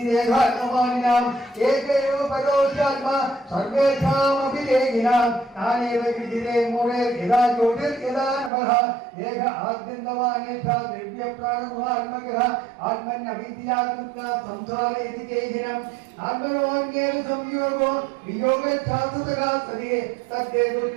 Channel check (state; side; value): drops out; left; at 8.5 s